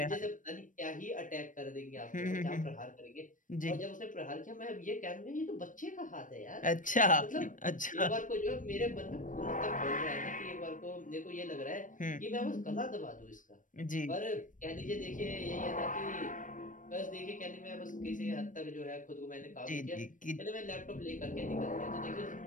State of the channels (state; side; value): late; right; 0.38 ms